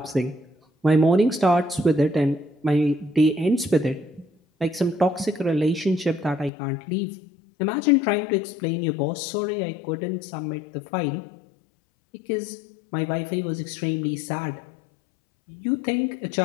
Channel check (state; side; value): drops out; right; at 6.5 s